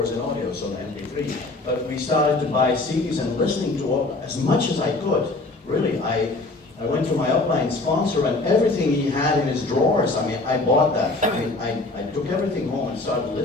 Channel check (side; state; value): right; quieter; 3.2 dB